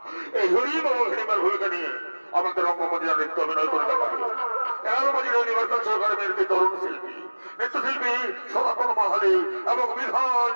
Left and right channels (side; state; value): both; inverted; correlation -1.00